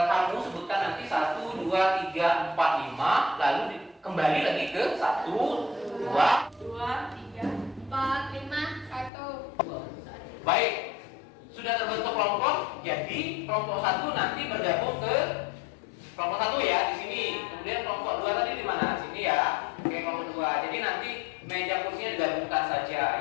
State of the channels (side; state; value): right; drops out; at 9.1 s